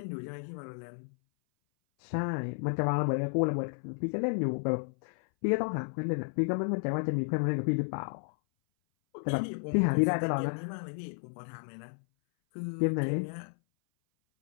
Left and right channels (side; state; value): right; silent; 56 dB below the other